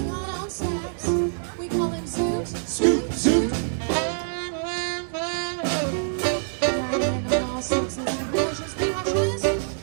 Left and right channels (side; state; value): left; silent; 62 dB below the other